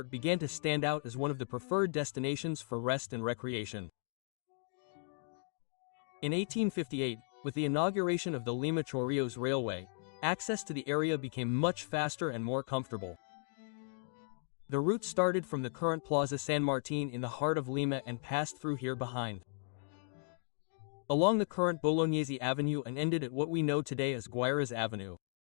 began to stand out as one of the preferred destinations for rest and recreation. In 1858, with the inauguration of the Lima-Chorrillos Railway, access to the area became much faster and more comfortable. The route started from the current Plaza San Martin in the heart of Lima and passed through here behind, along the current Bolognese Avenue and ended at what we know today as Guayras Avenue.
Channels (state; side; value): silent; right; 54 dB below the other